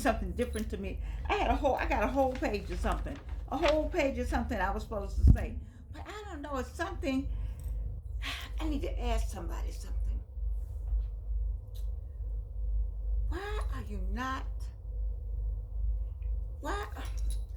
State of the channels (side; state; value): both; identical; correlation 1.00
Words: different to me. I got a whole page of something, I was supposed to say, but I don't know. It's something I need to ask somebody something. Why are you not? Why?